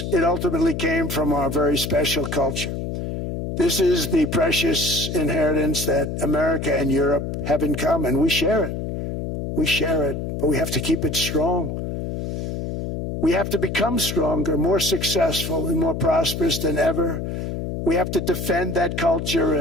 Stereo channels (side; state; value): left; noise; hum, 4 dB below the sound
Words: It ultimately came from our very special culture. This is the precious inheritance that America and Europe have in common. We share it. We share it, but we have to keep it strong. We have to become stronger, more successful, and more prosperous than ever. We have to defend that culture